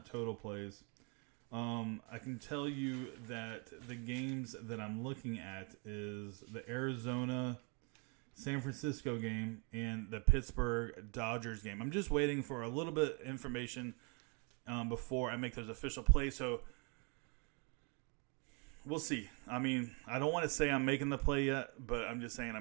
total plays. I can tell you that the games that I'm looking at is the Arizona San Francisco game and the Pittsburgh Dodgers game. I'm just waiting for a little bit of information before I make those official plays. So we'll see. I mean, I don't want to say I'm making the play yet, but I'm just saying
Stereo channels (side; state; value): left; quieter; 34.6 dB